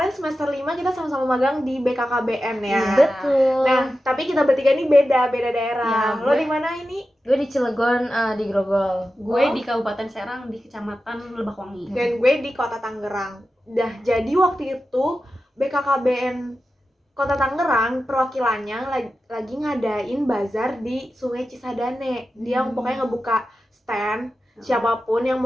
semester 5 kita sama-sama magang di BKKBN ya. Betul. Nah, tapi kita bertiga nih beda daerah. Ya, lo di mana ini? Gue di Cilegon, di Grogol. Gue di Kabupaten Serang di Kecamatan Lebakwangi. Dan gue di Kota Tangerang. Jadi waktu itu BKKBN Kota Tangerang perwakilannya lagi ngadain bazar di Sungai Cisadane. Dia pokoknya ngebuka stand. Siapapun yang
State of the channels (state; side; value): normal; both; correlation 0.92